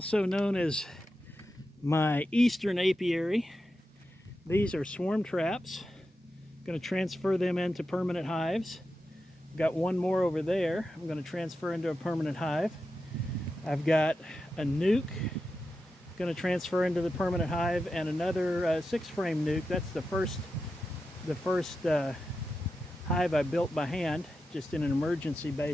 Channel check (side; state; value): both; normal; correlation 0.90